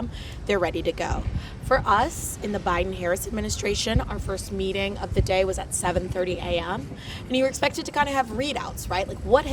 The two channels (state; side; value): identical; both; correlation 1.00